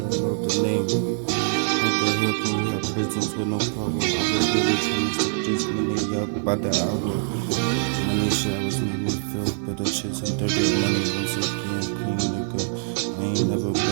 know the name. How the hell can we have prisons with no power? I was really trying to step this money up by the hour. Money showers make me feel better, chasing dirty money once again, clean nigga. I ain't never been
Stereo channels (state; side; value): silent; left; 62 dB below the other